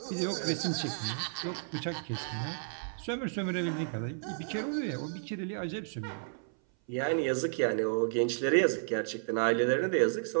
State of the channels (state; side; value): silent; left; 56 dB below the other